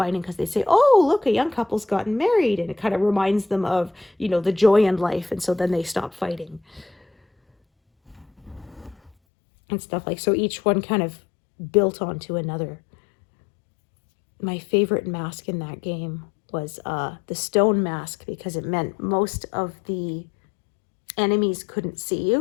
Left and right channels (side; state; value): right; drops out; at 9.1 s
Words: because they say, oh, look, a young couple's gotten married. And it kind of reminds them of, the joy in life. And so then they stop fighting. And stuff like, so each one kind of built onto another. My favorite mask in that game was the stone mask, because it meant most of the enemies couldn't see